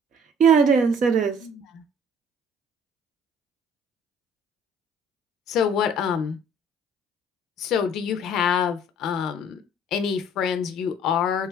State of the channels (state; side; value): normal; both; correlation 0.54